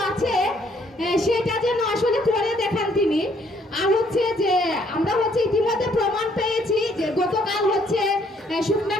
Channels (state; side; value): normal; both; correlation 0.66